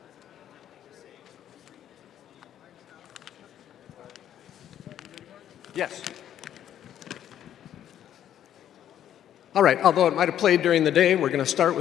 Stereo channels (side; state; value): right; quieter; 10.6 dB